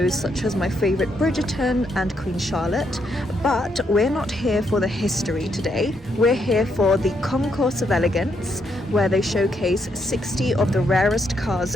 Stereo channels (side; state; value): both; normal; correlation 0.76